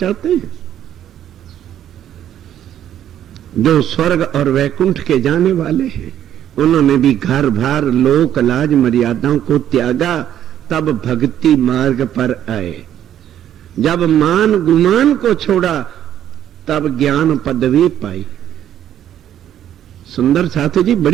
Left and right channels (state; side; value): quieter; left; 10.9 dB